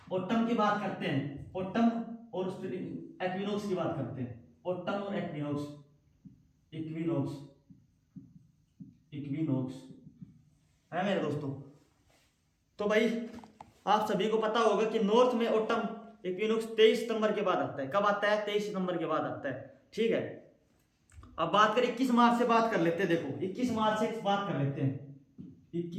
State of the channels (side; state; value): both; identical; correlation 1.00